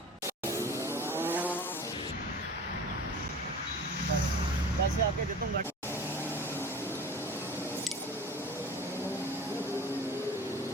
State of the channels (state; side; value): normal; both; correlation 0.39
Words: पैसे आके दे दूंगा।